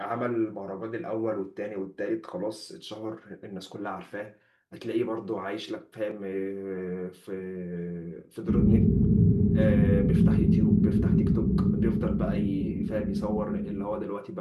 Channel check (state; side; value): identical; both; correlation 1.00